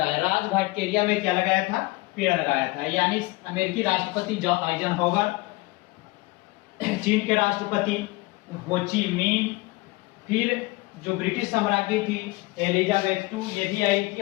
राजघाट के एरिया में क्या लगाया था? पेड़ लगाया था। यानी अमेरिकी राष्ट्रपति आइजनहोवर, चीन के राष्ट्रपति हो ची मिन, फिर जो ब्रिटिश साम्राज्ञी थी एलिजाबेथ टू, ये भी आई थी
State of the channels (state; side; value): quieter; right; 22.1 dB